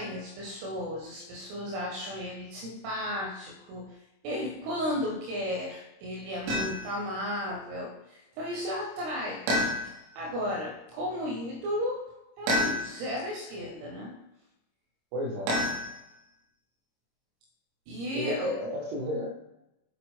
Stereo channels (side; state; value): left; late; 26 ms